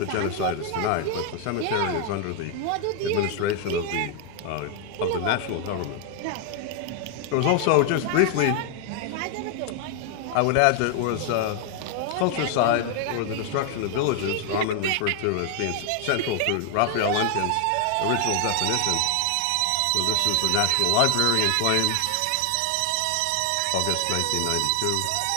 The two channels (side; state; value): both; different; correlation 0.00